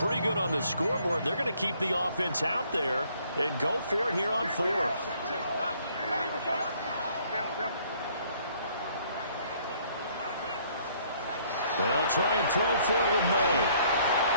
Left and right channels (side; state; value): both; inverted; correlation -0.63